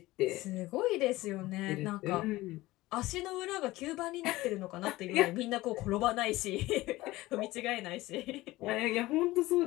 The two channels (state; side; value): quieter; right; 18.6 dB